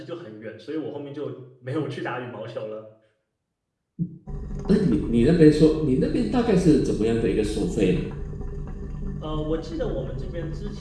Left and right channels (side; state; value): both; identical; correlation 1.00